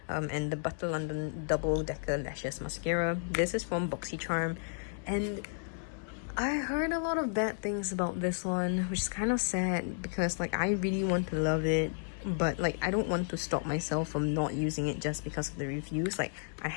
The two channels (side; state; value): right; silent; digital silence